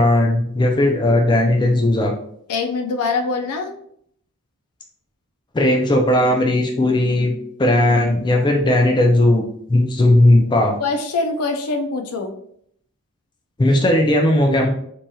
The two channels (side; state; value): both; normal; correlation 0.69